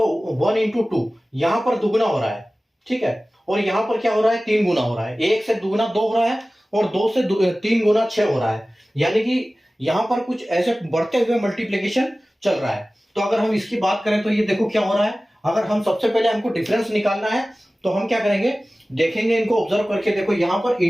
1 into 2 यहां पर दुगुना हो रहा है। ठीक है, और यहां पर क्या हो रहा है, 3 गुना हो रहा है। 1 से दुगुना 2 हो रहा है और 2 से 3 गुना 6 हो रहा है, यानी कि यहां पर कुछ ऐसे बढ़ते हुए मल्टीप्लिकेशन चल रहा है। तो अगर हम इसकी बात करें तो ये देखो क्या हो रहा है। अगर हम सबसे पहले हमको डिफरेंस निकालना है तो हम क्या करेंगे, देखेंगे इनको ऑब्जर्व करके। देखो यहां पर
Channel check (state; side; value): normal; both; correlation 0.97